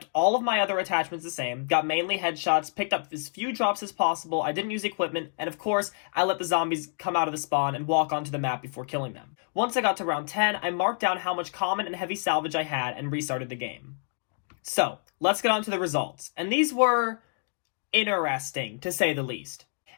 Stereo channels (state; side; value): silent; right; 57 dB below the other